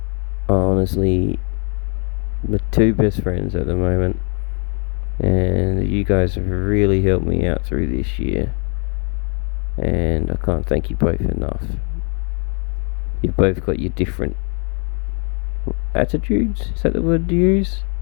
are honestly the two best friends at the moment, and you guys have really helped me out through this year, and I can't thank you both enough. You've both got your different attitudes, is that the word to use?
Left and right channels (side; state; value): right; quieter; 38.4 dB